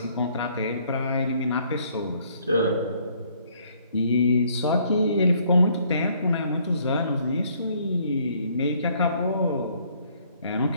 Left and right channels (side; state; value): both; inverted; correlation -0.64